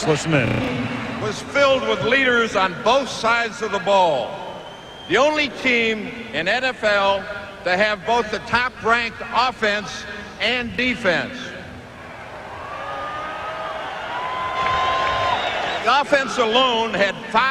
listen in. Was filled with leaders on both sides of the ball. The only team in NFL to have both the top-ranked offense and defense. The offense alone had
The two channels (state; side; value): identical; both; correlation 1.00